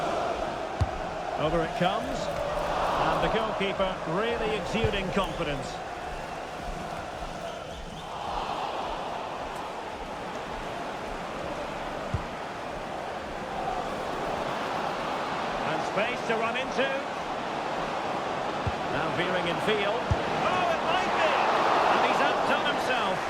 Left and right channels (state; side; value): identical; both; correlation 1.00